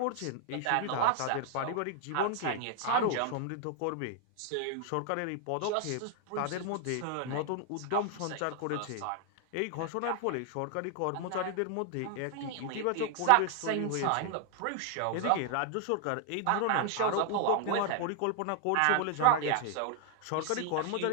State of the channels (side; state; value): both; different; correlation 0.00